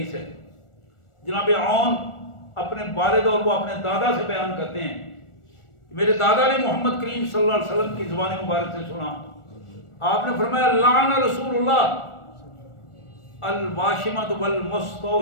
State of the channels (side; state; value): right; late; 1.4 ms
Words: ہے. جناب عون اپنے والد اور وہ اپنے دادا سے بیان کرتے ہیں، میرے دادا نے محمد کریم صلی اللہ علیہ وسلم کی زبان مبارک سے سنا، آپ نے فرمایا لعن رسول اللہ الواشمۃ